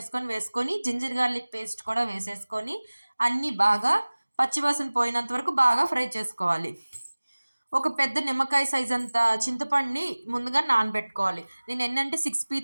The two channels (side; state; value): both; inverted; correlation -1.00